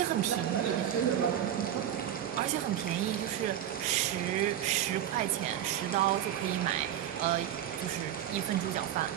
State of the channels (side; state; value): left; quieter; 10.9 dB